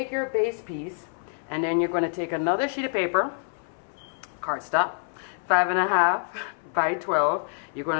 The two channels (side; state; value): right; silent; 60 dB below the other